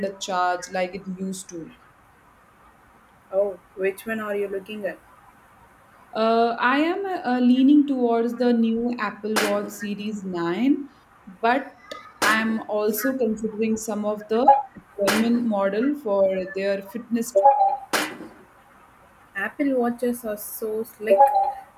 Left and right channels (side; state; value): both; identical; correlation 1.00